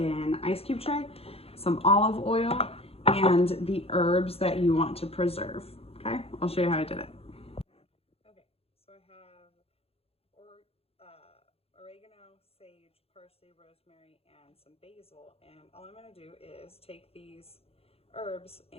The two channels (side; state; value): right; late; 0.29 ms